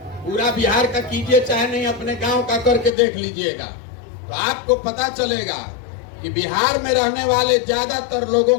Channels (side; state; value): right; drops out; at 2.9 s